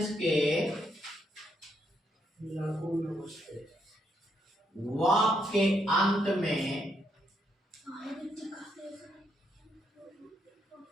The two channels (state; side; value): normal; both; correlation 0.76